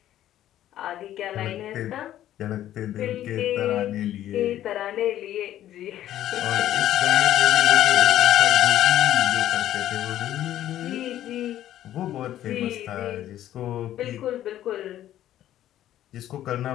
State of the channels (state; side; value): quieter; right; 12.5 dB